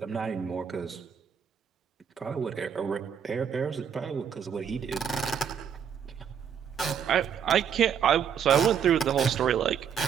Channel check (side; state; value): left; quieter; 8.0 dB